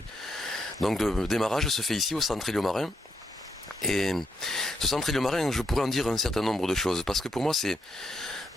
Donc le démarrage se fait ici au centre Éliomarin. Et ce centre Éliomarin, je pourrais en dire un certain nombre de choses, parce que pour moi c'est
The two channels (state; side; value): normal; both; correlation 0.78